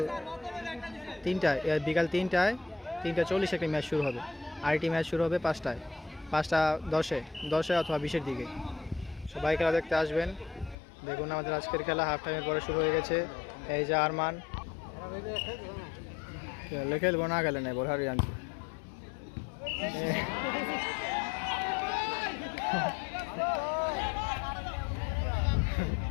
3টায়, বিকাল 3টা 40 একটি ম্যাচ শুরু হবে। আরেকটি ম্যাচ শুরু হবে 5টা 10-এ অথবা 20-এর দিকে। সবাই খেলা দেখতে আসবেন। দেখুন আমাদের আজকের খেলা হাফ টাইমের পরে শুরু হয়ে গেছে। এই যে আরমান খেলবো না, গেলে নেই বোঝারি আনছি।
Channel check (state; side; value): drops out; right; at 10.8 s